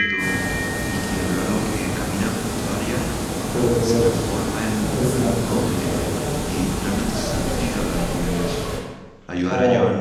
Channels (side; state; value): both; identical; correlation 1.00